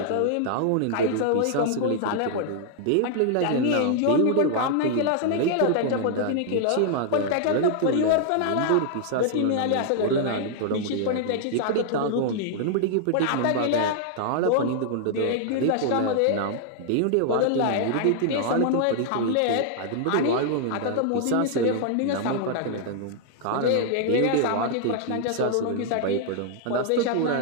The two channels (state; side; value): different; both; correlation -0.01